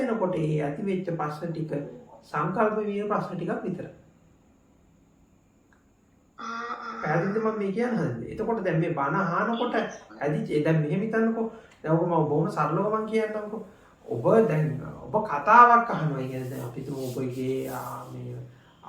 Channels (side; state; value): both; identical; correlation 1.00